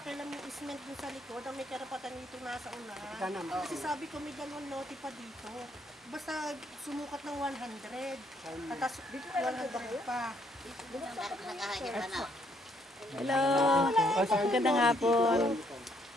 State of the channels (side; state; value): both; normal; correlation 0.70